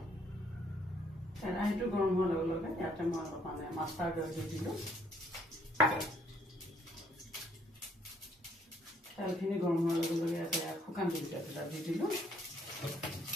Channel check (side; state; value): both; normal; correlation 0.66